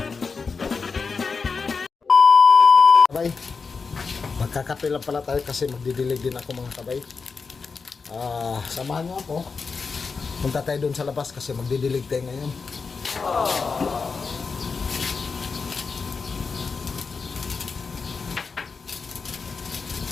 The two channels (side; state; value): right; quieter; 4.9 dB